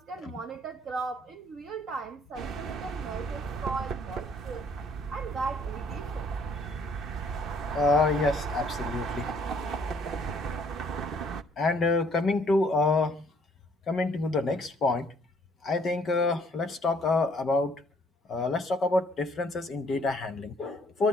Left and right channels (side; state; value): both; normal; correlation 0.63